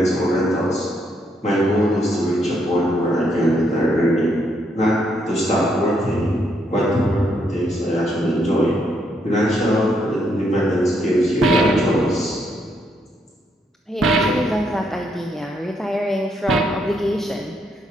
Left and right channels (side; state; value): both; normal; correlation 0.75